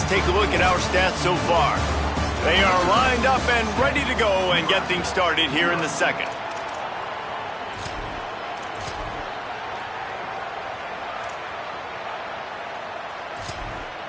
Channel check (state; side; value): identical; both; correlation 1.00